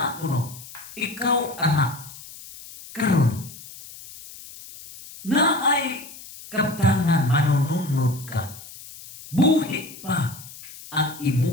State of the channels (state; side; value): noise; left; hiss, 16 dB below the sound